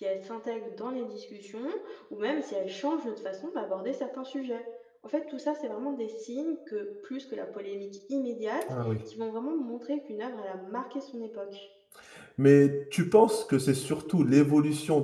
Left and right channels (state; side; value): identical; both; correlation 1.00